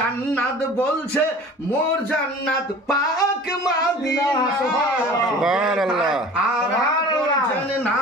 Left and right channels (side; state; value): both; normal; correlation 0.42